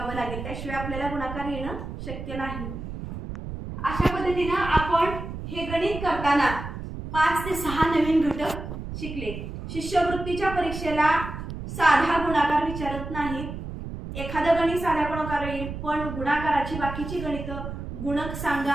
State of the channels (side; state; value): right; noise; rumble, 8 dB below the sound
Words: लागेल. त्याशिवाय आपल्याला गुणाकार येणं शक्य नाही. अशा पद्धतीनं आपण हे गणित करताना 5 ते 6 नवीन घटक शिकले. शिष्यवृत्तीच्या परीक्षेला साधा गुणाकार विचारत नाहीत. एखादं गणित साधा गुणाकार येईल, पण गुणाकाराची बाकीची गणित गुणक